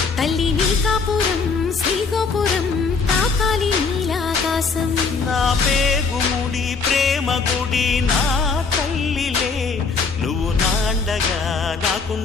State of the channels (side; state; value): right; quieter; 4.8 dB